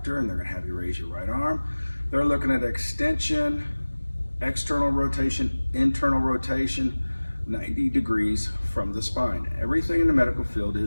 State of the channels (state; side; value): inverted; both; correlation -1.00